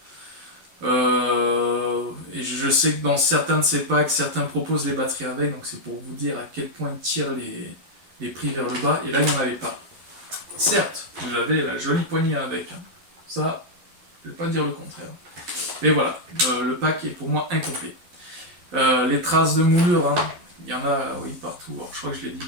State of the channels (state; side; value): late; left; 11 ms